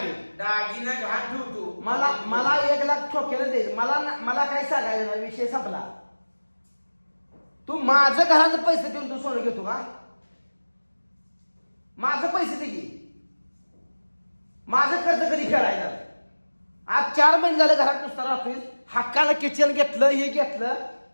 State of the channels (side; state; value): both; inverted; correlation -1.00